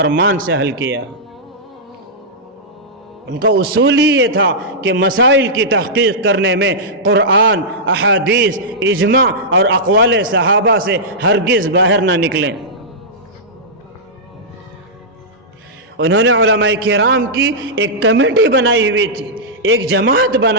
سے حل کیا. ان کا اصول ہی یہ تھا کہ مسائل کی تحقیق کرنے میں قرآن، احادیث، اجماع اور اقوال صحابہ سے ہرگز باہر نہ نکلیں. انہوں نے علماء کرام کی ایک کمیٹی بنائی ہوئی تھی، ایک جماعت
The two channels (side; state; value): both; normal; correlation -0.12